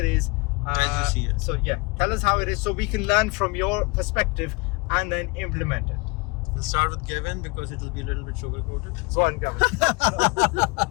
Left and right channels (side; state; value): right; quieter; 26.4 dB